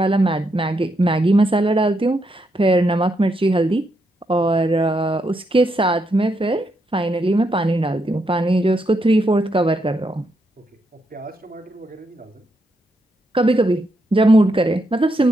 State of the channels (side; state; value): both; normal; correlation 0.80